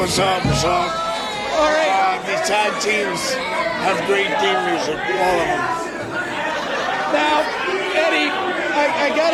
up? What's up? All right. These tag teams have great theme music, all of them. Now, Eddie, I got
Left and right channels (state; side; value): identical; both; correlation 1.00